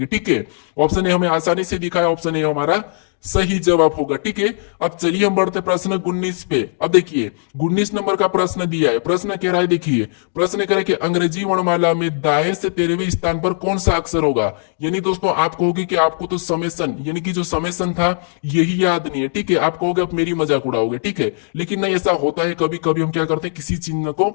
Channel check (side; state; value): right; silent; digital silence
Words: ठीक है। ऑप्शन ए हमें आसानी से दिखा है, ऑप्शन ए हमारा सही जवाब होगा, ठीक है। अब चलिए हम बढ़ते प्रश्न 19 पे। अब देखिए 19 नंबर का प्रश्न दिया है। प्रश्न कह रहा है, देखिए प्रश्न कह रहा है कि अंग्रेजी वर्णमाला में दाएं से 13वें स्थान पर कौन सा अक्षर होगा। यानी दोस्तों आप कहोगे कि आपको तो समेसन यानी कि जो समेसन था यही याद नहीं है, ठीक है। आप कहोगे आप मेरी मजाक उड़ाओगे, ठीक है, लेकिन नहीं, ऐसा होता है कभी कभी हम क्या करते हैं, किसी चिन्ह को